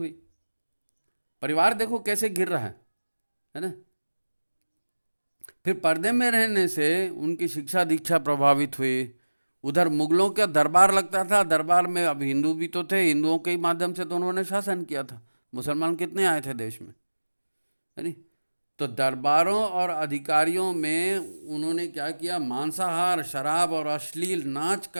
परिवार देखो कैसे गिर रहा है ना। फिर पर्दे में रहने से उनकी शिक्षा दीक्षा प्रभावित हुई। उधर मुगलों का दरबार लगता था, दरबार में अब हिंदू भी तो थे, हिंदुओं के ही माध्यम से तो उन्होंने शासन किया था। मुसलमान कितने आए थे देश में, है नहीं। तो दरबारों और अधिकारियों में उन्होंने क्या किया, मांसाहार, शराब और अश्लील नाच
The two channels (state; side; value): inverted; both; correlation -1.00